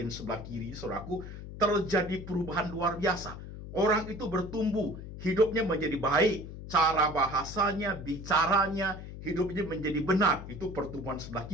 sebelah kiri, saudaraku, terjadi perubahan luar biasa. Orang itu bertumbuh, hidupnya menjadi baik, cara bahasanya, bicaranya, hidupnya menjadi benar. Itu pertumbuhan sebelah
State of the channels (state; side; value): noise; left; hum, 11 dB below the sound